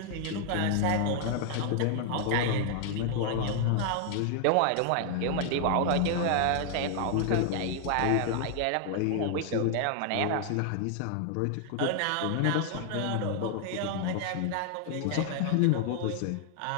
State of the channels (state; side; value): different; both; correlation 0.00